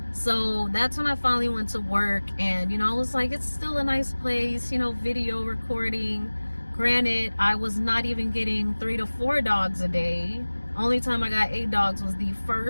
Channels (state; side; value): inverted; both; correlation -1.00